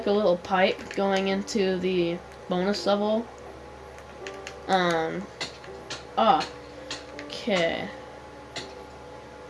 a little pipe going into the bonus level. Okay.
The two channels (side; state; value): both; identical; correlation 1.00